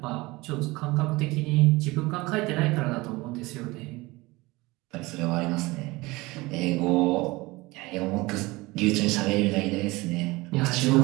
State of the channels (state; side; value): quieter; left; 21.9 dB